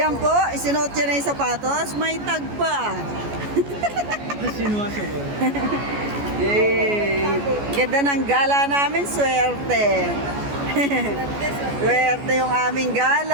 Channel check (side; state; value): left; late; 14 ms